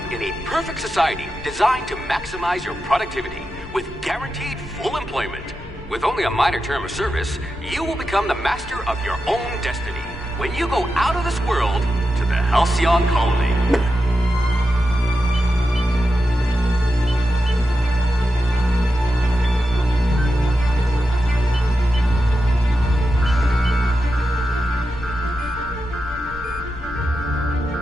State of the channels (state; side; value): normal; both; correlation 0.89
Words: in a perfect society designed to maximize your productivity, with guaranteed full employment. With only a minor term of service, you will become the master of your own destiny when you go out of this world to the Halcyon Colony.